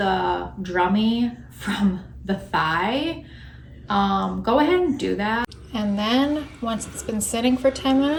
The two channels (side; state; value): both; identical; correlation 1.00